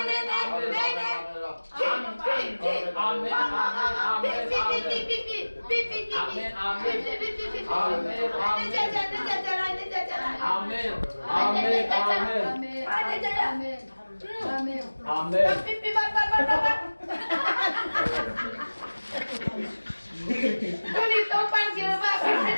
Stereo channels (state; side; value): inverted; both; correlation -1.00